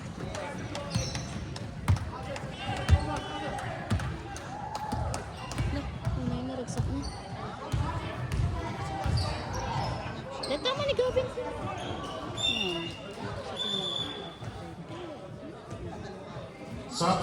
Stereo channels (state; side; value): identical; both; correlation 1.00